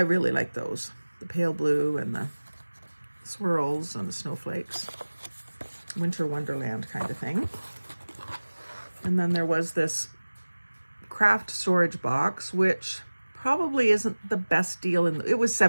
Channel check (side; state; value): both; inverted; correlation -1.00